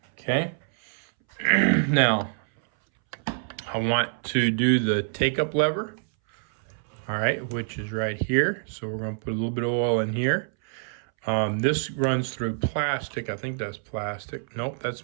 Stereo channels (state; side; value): silent; left; 61 dB below the other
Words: Okay. Now, I want to do the take-up lever. All right, which is right here. So we're going to put a little bit of oil in here. This runs through plastic. I think that's plastic. Nope, that's